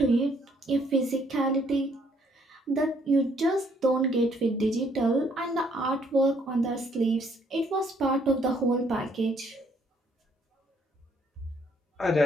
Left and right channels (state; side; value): normal; both; correlation 0.66